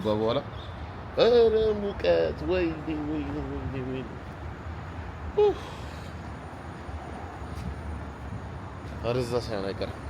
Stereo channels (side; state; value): both; identical; correlation 1.00